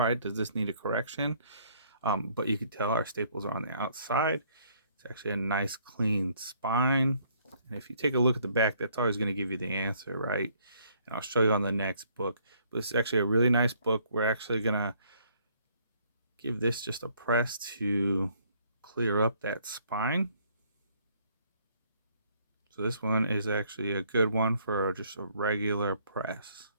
right, does this need a correction? But you can tell our staples are on the outside. It's actually a nice clean spine. And if you take a look at the back, that's always going to give you the answer, right? And I'll show you on the next book. But it's actually a really nice book. We're actually going to give this just a press to clear up that spine. So this one is actually a good one for just a regular press.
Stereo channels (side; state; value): both; inverted; correlation -0.64